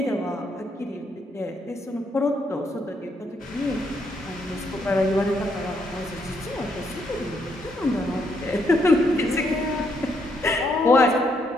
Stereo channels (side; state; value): both; normal; correlation 0.74